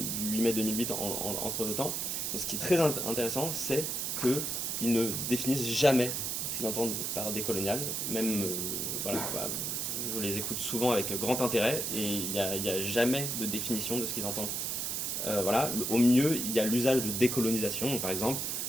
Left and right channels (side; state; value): right; noise; hiss, 1 dB below the sound